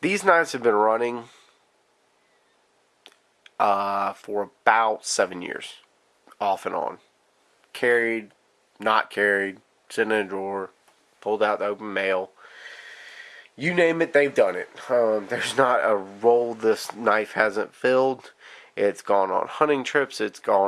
These knives have been running for about 7 years, off and on. Carried, not carried, sitting in a drawer, pulled out the open mail. You name it, they've done it. There's not a roll this knife hasn't filled. It's gone on hunting trips, it's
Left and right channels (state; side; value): identical; both; correlation 1.00